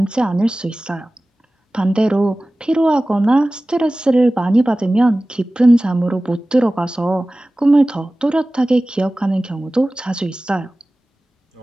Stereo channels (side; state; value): both; normal; correlation 0.97